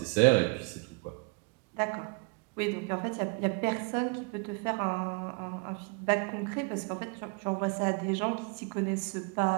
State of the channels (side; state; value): left; quieter; 31.4 dB